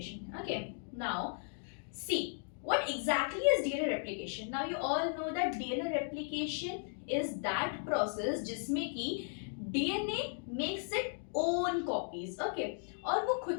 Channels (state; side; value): silent; right; 54 dB below the other